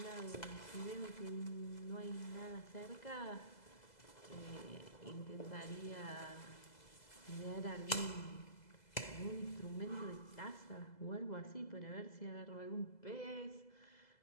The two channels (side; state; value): right; late; 2.0 ms